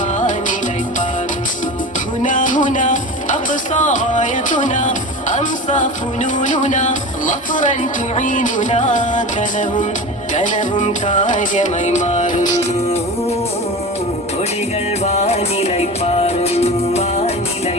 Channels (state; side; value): normal; both; correlation 0.30